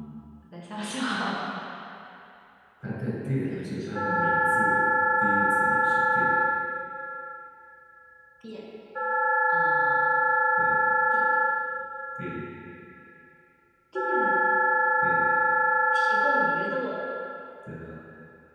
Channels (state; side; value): identical; both; correlation 1.00